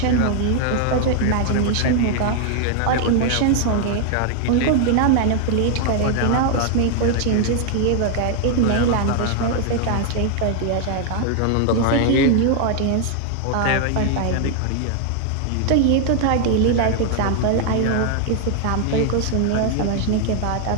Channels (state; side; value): different; both; correlation 0.00